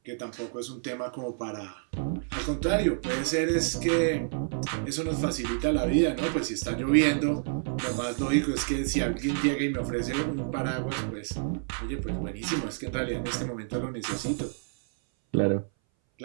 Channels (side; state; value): left; silent; 59 dB below the other